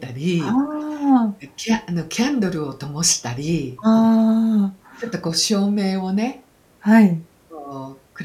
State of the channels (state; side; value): identical; both; correlation 1.00